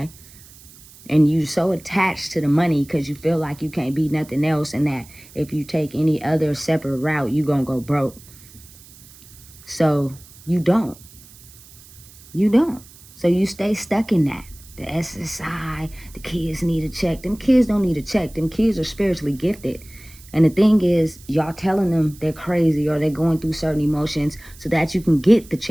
and you so attached to the money because you feel like you can't be nothing else, and that if you take any other separate route, you're gonna go broke. So you don't. So you stay stuck in that. The SSI, the kids need a check. Them kids don't need a check. Them kids are spiritually gifted. And the thing is, y'all telling them they're crazy or they're going through certain emotions so that you can get the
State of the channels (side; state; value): right; noise; hiss, 22 dB below the sound